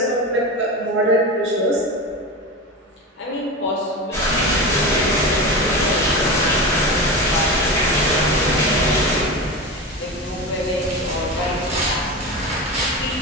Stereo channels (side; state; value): both; normal; correlation 0.25